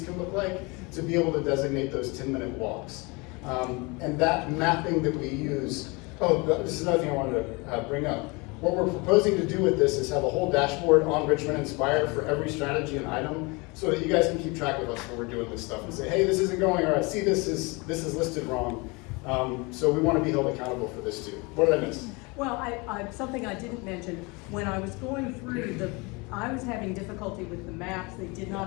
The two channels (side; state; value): right; quieter; 27.4 dB